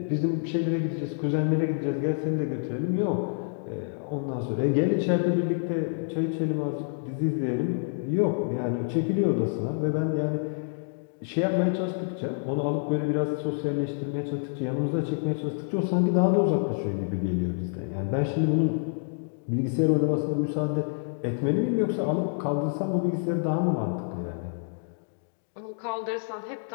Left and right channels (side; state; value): right; silent; digital silence